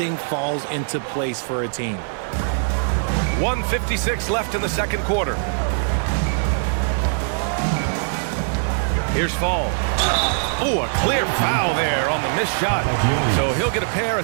falls into place for a team. 1:56 left in the second quarter. Here's Fall. Oh, a clear foul there on the missed shot. So he'll get a pair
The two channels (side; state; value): left; silent; 64 dB below the other